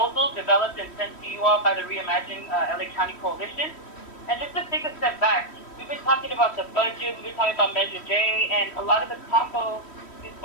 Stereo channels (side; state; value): right; late; 3.1 ms